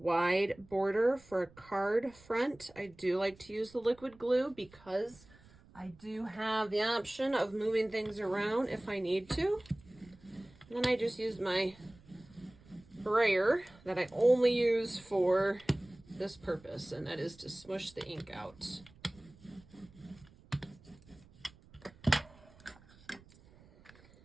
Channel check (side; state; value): right; noise; rumble, 25 dB below the sound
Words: border for a card front, I do like to use the liquid glue because I do have the option of moving things around if I need to. And then I just use my brayer that I only use for this purpose, and that is to smush the ink out.